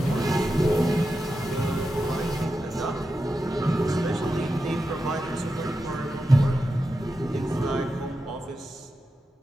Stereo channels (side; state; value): both; normal; correlation 0.90